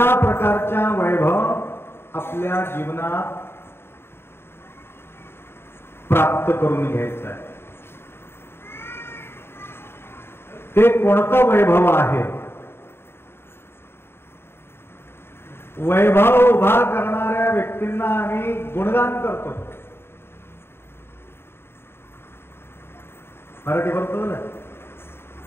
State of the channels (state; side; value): late; right; 0.11 ms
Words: प्रकारच्या वैभव आपल्या जीवनात प्राप्त करून घ्यायचं आहे. ते कोणतं वैभव आहे? वैभव उभा करणाऱ्या व्यक्तींना आम्ही गुणगान करतो. मराठी बोलतो ना.